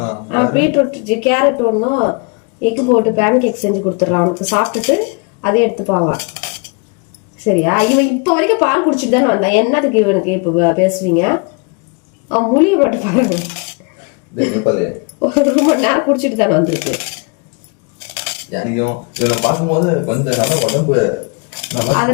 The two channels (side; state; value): right; quieter; 33.6 dB